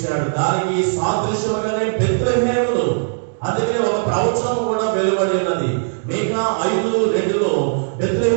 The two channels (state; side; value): silent; left; digital silence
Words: దానికి సాదృశ్యముగానే బెత్లెహేములు. అందుకనే ఒక ప్రవచనం కూడా వెలువడి ఉన్నది. మీకా 5:2